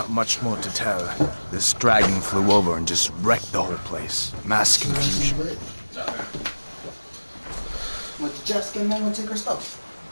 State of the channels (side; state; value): both; inverted; correlation -1.00